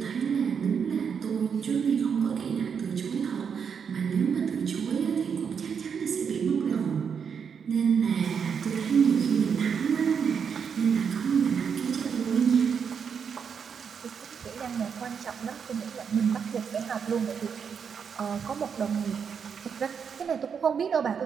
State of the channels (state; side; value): quieter; left; 6.8 dB